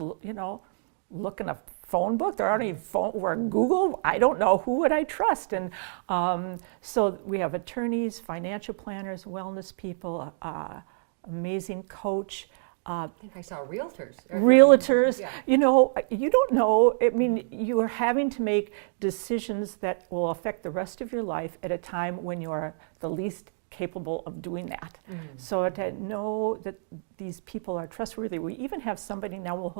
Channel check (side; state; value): left; silent; digital silence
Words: look in a phone book? There aren't any phone, or Google. I don't know. Who would I trust? And so we have attorneys, financial planners, wellness people, amazing coach. I think I saw realtors. Realtors. You don't know. I mean, you are having to make decisions that will affect the rest of your life at a time when you are the least capable of doing that. So to know that these people are trustworthy. We even have somebody now who